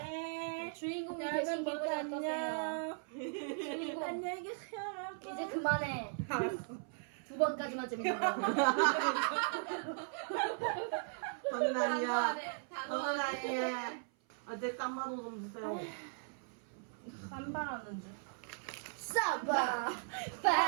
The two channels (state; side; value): silent; left; 52 dB below the other